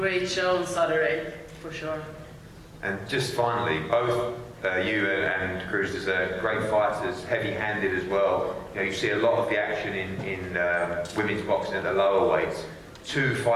show on Saturday, for sure. And just finally, both you and Cruz are great fighters, heavy-handed as well. You know, you see a lot of the action in women's boxing at the lower weights. 2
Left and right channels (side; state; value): both; identical; correlation 1.00